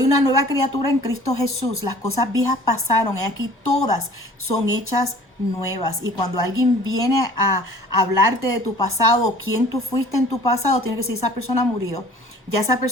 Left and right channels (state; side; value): normal; both; correlation 0.49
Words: una nueva criatura en Cristo Jesús. Las cosas viejas pasaron y aquí todas son hechas nuevas. Y cuando alguien viene a hablarte de tu pasado, quién tú fuiste en tu pasado, tiene que decir, esa persona murió. Ya esa